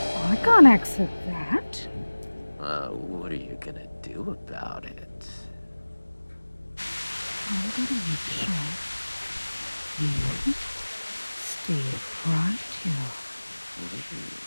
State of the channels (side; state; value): both; inverted; correlation -1.00